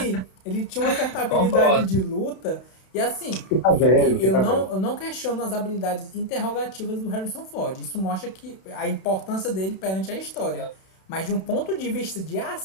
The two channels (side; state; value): right; late; 32 ms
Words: ele tinha uma certa habilidade de luta. E assim, eu não questiono as habilidades interrogativas do Harrison Ford. Isso mostra que a importância dele perante a história. Mas de um ponto de vista de